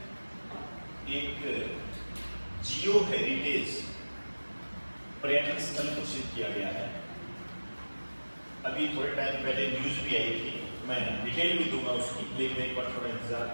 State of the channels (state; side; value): inverted; both; correlation -1.00